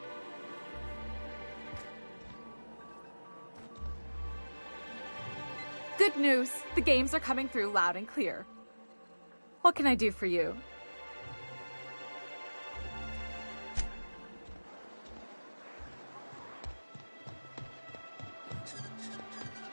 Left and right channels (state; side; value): inverted; both; correlation -1.00